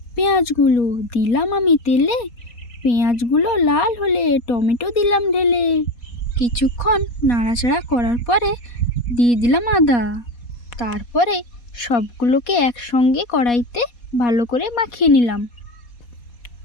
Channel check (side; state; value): right; late; 4.2 ms